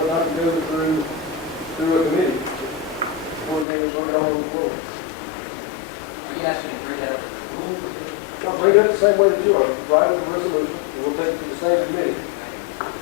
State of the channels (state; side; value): drops out; right; at 3.7 s